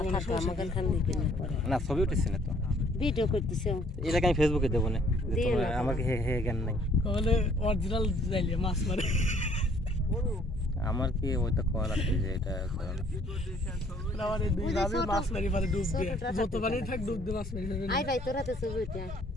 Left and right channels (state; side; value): normal; both; correlation 0.61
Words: না ছবি উঠেছি না তো, ভিডিও করতেছে এটাকে আমি ফেসবুকে দেবো না, আমার হে হে জ্ঞান নাই। তাহলে অরিজিনাল যাইলে মাছ মারে আমার কি ওইটা করা লাগছে যে এটা আমারে দুই ভাবে মাছ মারি পারে ডুব দিয়ে যত পানি থাক ডুব দিয়ে মাছ মারি ফেলবে। আই ভাই তোরা তো ছবি উঠে